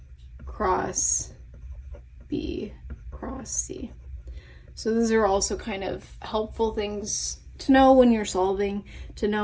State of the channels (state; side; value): identical; both; correlation 1.00